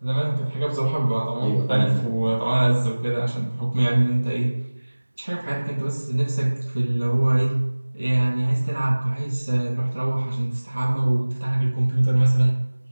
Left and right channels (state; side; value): inverted; both; correlation -1.00